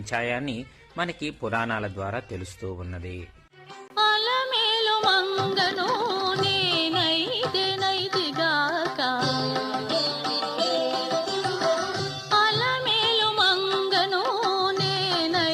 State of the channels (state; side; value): identical; both; correlation 1.00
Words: మనకి పురాణాల ద్వారా తెలుస్తూ ఉన్నది.